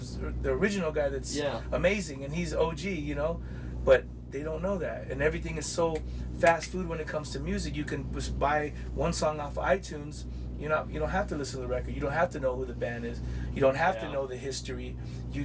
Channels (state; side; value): identical; both; correlation 1.00